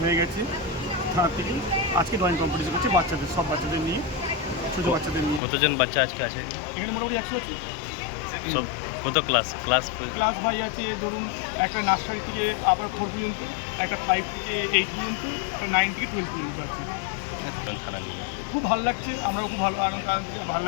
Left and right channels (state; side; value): drops out; right; at 5.4 s